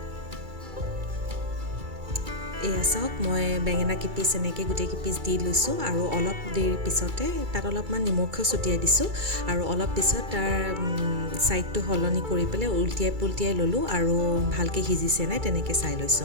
এয়া চাওক মই বেঙেনা কিপিচ এনেকৈ গোটেই কিপিচ দি লৈছোঁ আৰু অলপ দেৰি পিছতে তাত অলপমান নিমখো ছটিয়াই দিছোঁ আৰু অলপ পিছত তাৰ ছাইডটো সলনি কৰি পেলাই উল্টিয়াই পুল্টিয়াই ল'লোঁ আৰু ভালকৈ সিজিছে নাই তেনেকৈ চাই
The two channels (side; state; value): left; late; 2.3 ms